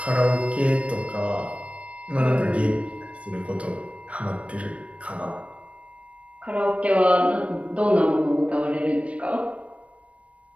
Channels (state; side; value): late; left; 0.063 ms